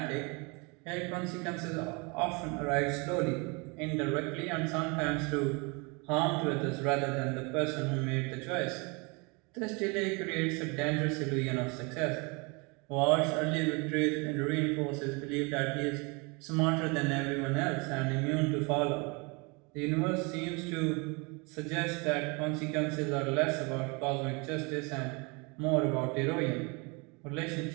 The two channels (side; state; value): left; quieter; 29.7 dB